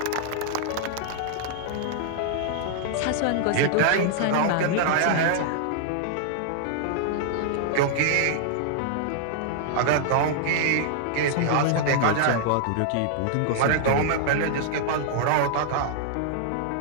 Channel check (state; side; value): different; both; correlation -0.01